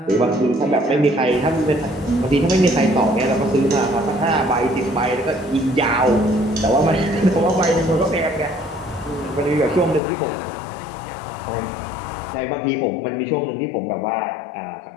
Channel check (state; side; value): drops out; right; at 10.0 s